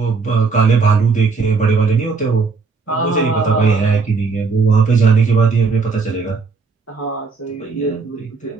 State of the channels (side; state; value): left; quieter; 4.7 dB